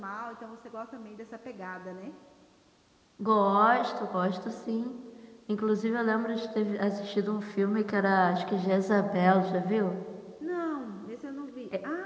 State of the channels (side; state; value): both; identical; correlation 1.00